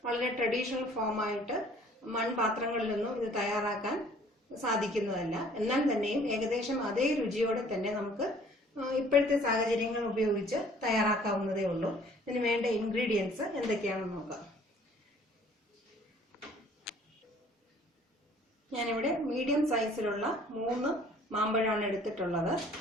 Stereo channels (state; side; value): normal; both; correlation 0.55